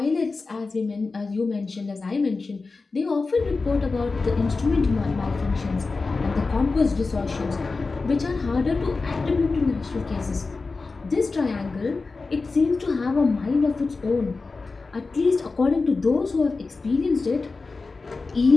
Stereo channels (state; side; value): quieter; right; 4.0 dB